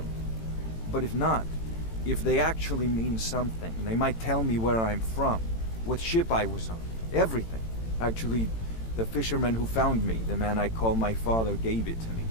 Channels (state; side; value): late; right; 18 ms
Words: But if not, if they actually mean something, they might tell me where I'm from, what ship I was on, everything. Actually, the fisherman who found me, the man I call my father, gave it to me.